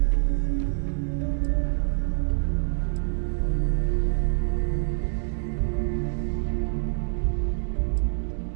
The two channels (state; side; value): silent; left; digital silence